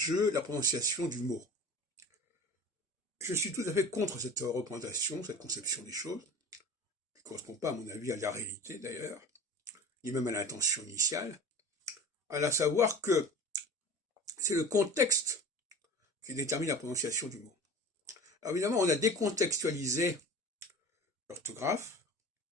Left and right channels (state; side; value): normal; both; correlation 0.38